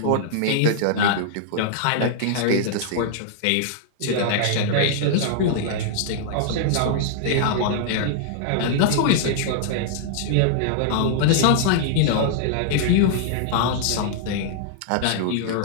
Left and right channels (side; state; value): both; different; correlation -0.01